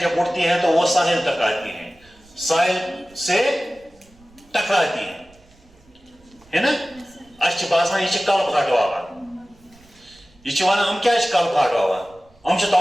اٹھتی ہیں تو وہ ساحل تک آتی ہیں, ساحل سے ٹکراتی ہیں, ہے نا. اچھا باسان یہ کل پھاٹواوان, یہ ونان ہم کیا کل پھاٹواوان, ہم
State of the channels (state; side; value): noise; right; rumble, 29 dB below the sound